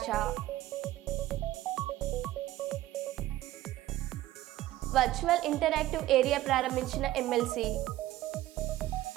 వర్చువల్ ఇంటరాక్టివ్ ఏరియా ప్రారంభించిన ఎమ్మెల్సీ.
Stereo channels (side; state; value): left; quieter; 15.2 dB